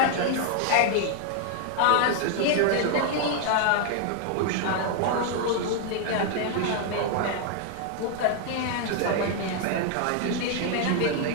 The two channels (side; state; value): both; different; correlation 0.00